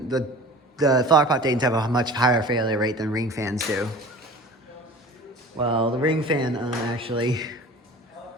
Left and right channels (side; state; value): both; normal; correlation 0.40